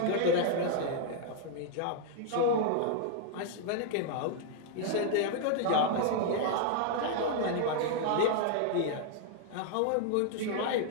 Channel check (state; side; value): different; both; correlation 0.00